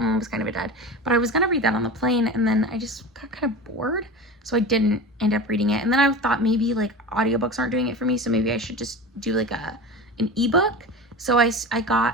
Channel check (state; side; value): normal; both; correlation 0.30